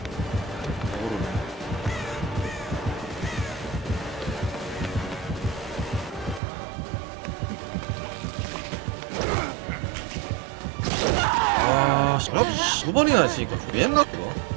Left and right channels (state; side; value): drops out; left; at 6.4 s